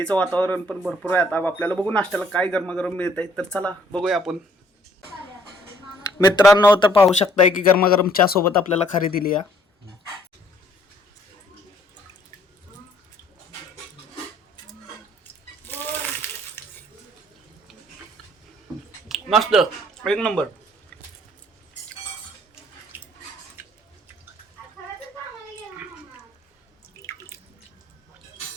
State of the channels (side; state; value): both; normal; correlation 0.62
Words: वातावरण पण भरपूर आहे. आता आपल्याला बघू नाश्त्याला काय गरमागरम मिळत आहे. तर चला बघूया आपण मित्रांनो. तर पाहू शकताय की गरमागरम चहा सोबत आपल्याला खारी दिली आहे. मस्त एक नंबर.